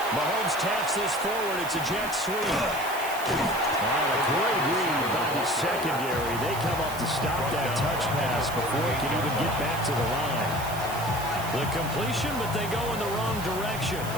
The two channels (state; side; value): noise; right; hiss, 12 dB below the sound